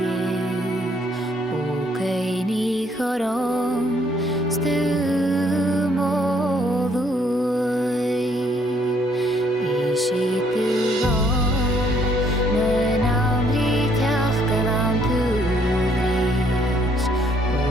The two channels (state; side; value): normal; both; correlation 0.66